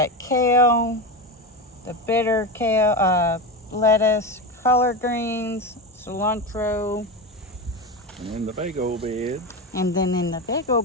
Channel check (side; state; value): both; normal; correlation 0.19